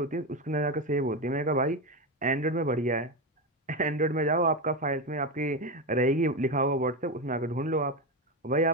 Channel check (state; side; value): normal; both; correlation 0.14